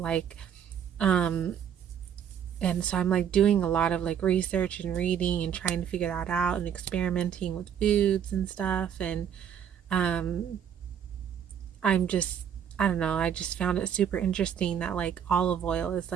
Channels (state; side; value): quieter; left; 8.6 dB